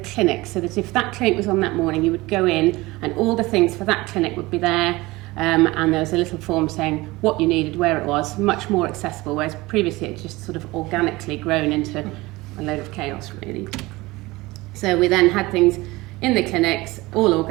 so that if that clinic was on that morning, you would go in and all the things for that clinic would be there, and there was a little form saying what you needed, where it was, much more accessible, whereas previously it just sort of organically grown into a load of chaos, really. So we then had things in the clinics, all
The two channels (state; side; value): quieter; left; 20.9 dB